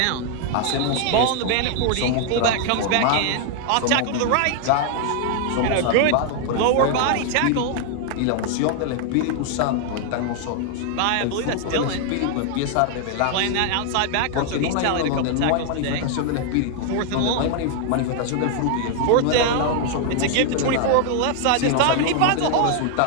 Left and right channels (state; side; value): different; both; correlation 0.00